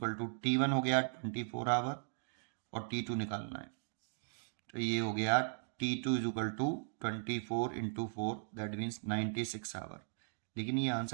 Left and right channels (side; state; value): left; silent; digital silence